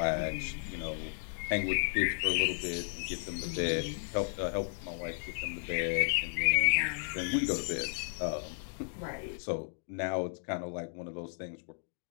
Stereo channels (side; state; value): right; silent; digital silence